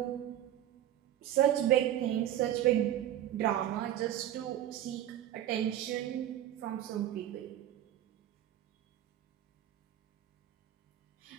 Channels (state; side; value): quieter; left; 12.0 dB